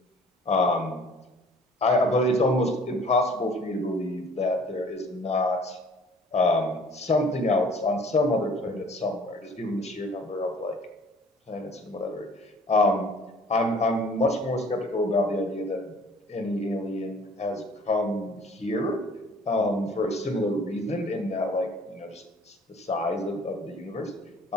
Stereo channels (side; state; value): both; normal; correlation 0.52